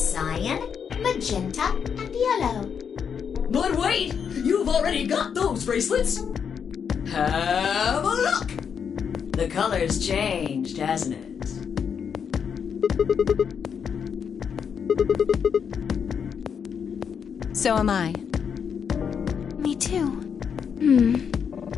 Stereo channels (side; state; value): right; quieter; 7.1 dB